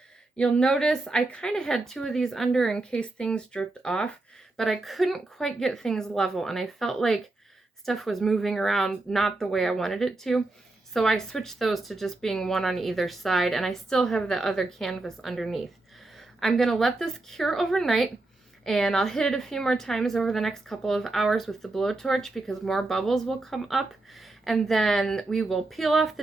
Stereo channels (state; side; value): quieter; left; 3.0 dB